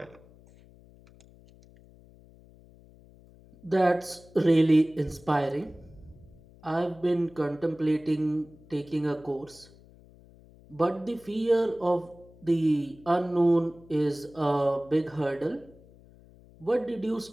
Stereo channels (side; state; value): left; noise; hum, 25 dB below the sound